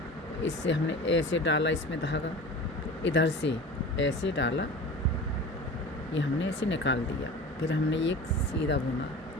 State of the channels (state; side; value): normal; both; correlation 0.36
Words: इससे हमने ऐसे डाला इसमें धागा, इधर से ऐसे डाला, ये हमने ऐसे निकाल दिया। फिर हमने एक सीधा बुना,